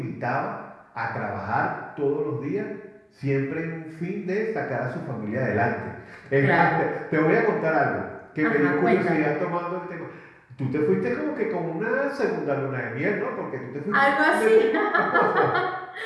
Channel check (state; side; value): identical; both; correlation 1.00